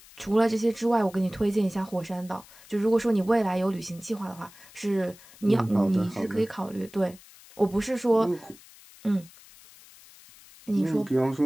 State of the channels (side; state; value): left; noise; hiss, 22 dB below the sound